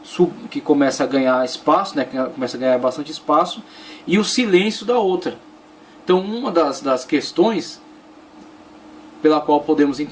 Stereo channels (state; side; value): identical; both; correlation 1.00